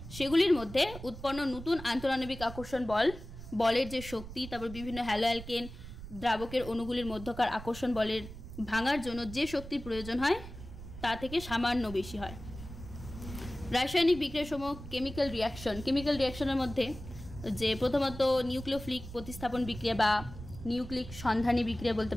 সেগুলির মধ্যে উৎপন্ন নতুন আন্তঃআণবিক আকর্ষণ বলের যে শক্তি, তারপর বিভিন্ন হ্যালো অ্যালকেন দ্রাবকের অণুগুলির মধ্যকার আকর্ষণ বলের ভাঙার জন্য যে শক্তির প্রয়োজন হয় তা থেকে সামান্য বেশি হয়। রাসায়নিক বিক্রিয়ার সময় কেমিক্যাল রিয়াকশনের মধ্যে যে প্রথমত নিউক্লিওফিলিক প্রতিস্থাপন বিক্রিয়া বা নিউক্লিক সন্ধানী বিক্রিয়া বলতে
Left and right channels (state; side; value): noise; right; rumble, 13 dB below the sound